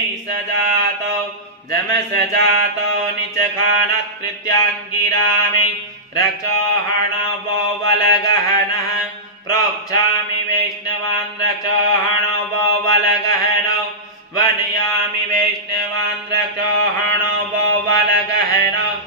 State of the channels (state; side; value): normal; both; correlation -0.15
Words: सजातो जमसजातो निचखानत्कृत्याङ्गिरामि रक्षोहणवो वलगहनः प्रोक्षामि वैष्णवान् रक्षोहणवो वलगहनो वनयामि वैष्णवान् रक्षोहणवो वलगहनो